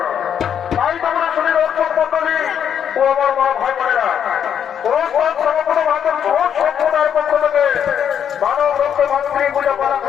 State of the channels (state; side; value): quieter; right; 8.6 dB